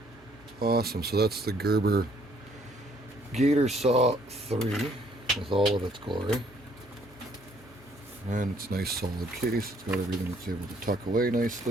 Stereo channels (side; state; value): both; normal; correlation 0.64